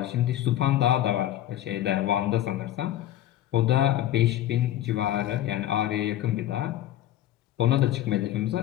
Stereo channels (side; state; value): right; quieter; 12.8 dB